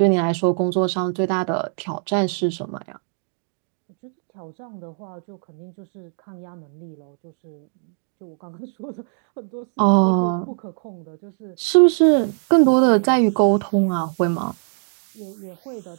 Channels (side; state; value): left; silent; 62 dB below the other